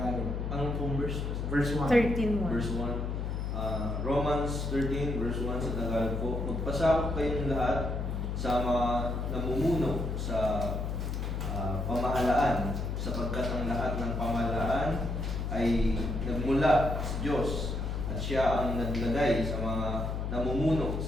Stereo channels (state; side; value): noise; left; hum, 2 dB below the sound